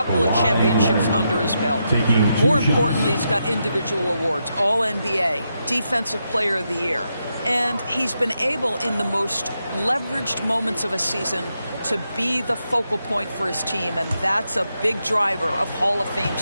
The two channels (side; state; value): both; inverted; correlation -0.84